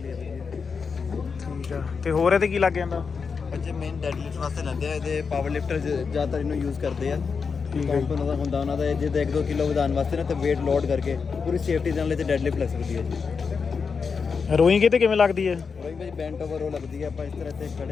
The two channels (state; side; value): quieter; right; 5.5 dB